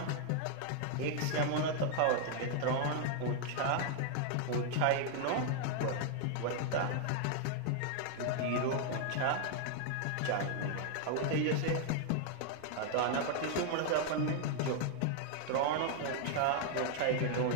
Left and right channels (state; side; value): different; both; correlation 0.00